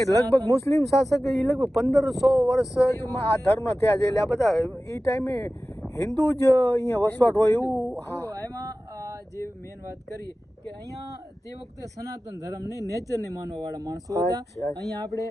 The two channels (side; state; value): both; normal; correlation 0.96